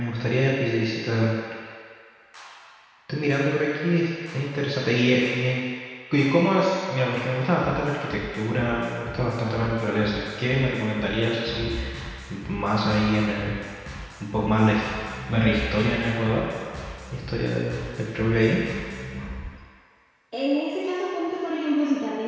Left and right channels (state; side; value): identical; both; correlation 1.00